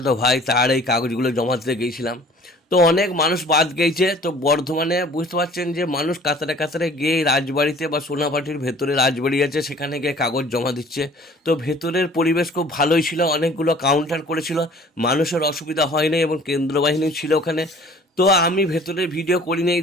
ভাই তার এই কাগজগুলো জমা দিতে গেছিলাম। তো অনেক মানুষ বাদ গেছে, তো বর্ধমানে বুঝতে পারছেন যে মানুষ কাতারে কাতারে গিয়ে এই রাজবাড়িতে বা সোনাপাটির ভেতরে রাজবাড়ি আছে সেখানে গিয়ে কাগজ জমা দিচ্ছে। তো ভেতরের পরিবেশ খুব ভালোই ছিল, অনেকগুলো কাউন্টার করেছিল, মানুষের অসুবিধা হয়নি এবং কেন্দ্র বাহিনী ছিল ওখানে। তো আমি ভেতরে ভিডিও করিনি,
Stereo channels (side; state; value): both; normal; correlation 0.50